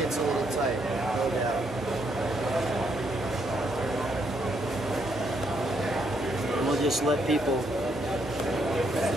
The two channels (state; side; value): normal; both; correlation 0.74